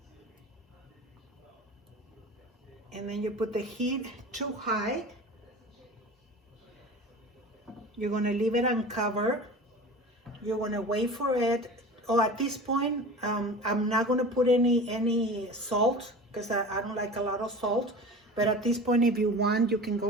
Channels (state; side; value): normal; both; correlation 0.36